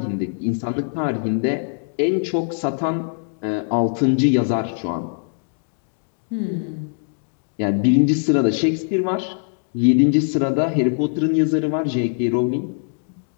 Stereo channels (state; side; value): silent; right; 64 dB below the other